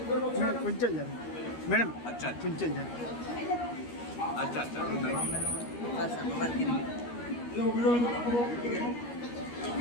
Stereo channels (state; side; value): late; right; 13 ms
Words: कुंचल जाने मैडम। अच्छा कुंचल जाने। अच्छा अच्छा